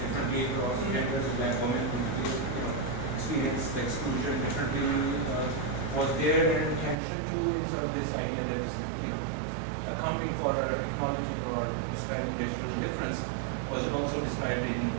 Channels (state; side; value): drops out; left; at 7.0 s